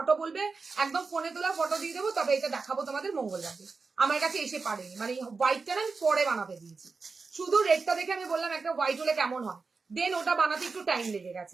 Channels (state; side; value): quieter; left; 4.5 dB